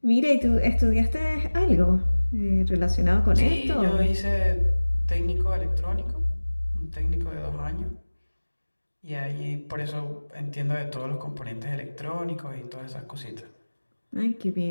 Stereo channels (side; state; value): both; inverted; correlation -1.00